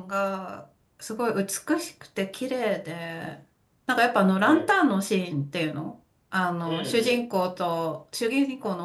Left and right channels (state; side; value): identical; both; correlation 1.00